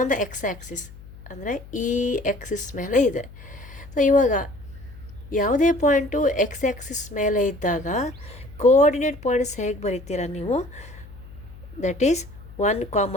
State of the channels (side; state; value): left; noise; hum, 18 dB below the sound